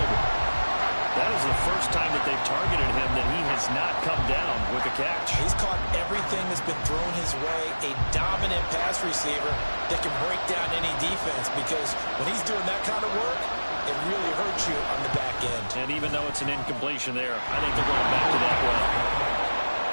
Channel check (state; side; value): inverted; both; correlation -1.00